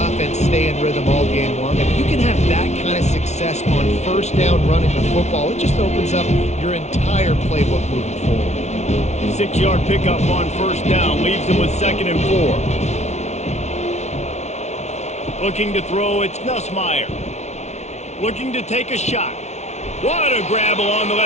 stay in rhythm all game long. If you can have that kind of success on first down running the football, it just opens up your entire playbook moving forward. 6-yard pickup on first down leaves him with 2nd and 4. Looking to throw, it's Nussmeier. Looking to take a shot. What a grab along the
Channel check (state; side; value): late; right; 0.32 ms